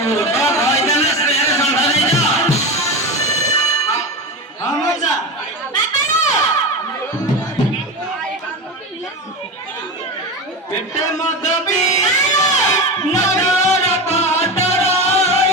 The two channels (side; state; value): both; normal; correlation 0.22